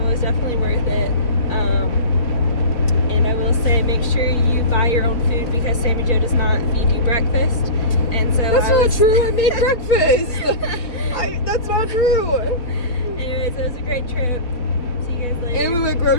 definitely worth it. And I will say, make sure you buy your own food, because Sammy Joe does not feed you breakfast. And so That's not true. I made breakfast. That's not true. Anyways, it was a great trip. See you guys later. And we went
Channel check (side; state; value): right; late; 4.0 ms